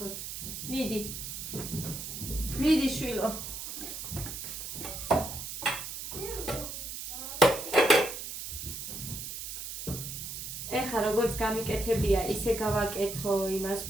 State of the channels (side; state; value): right; noise; hiss, 7 dB below the sound